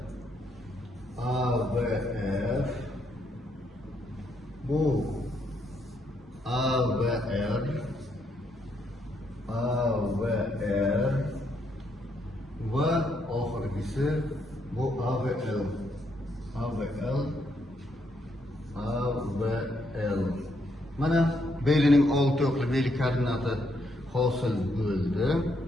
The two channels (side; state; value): both; normal; correlation 0.75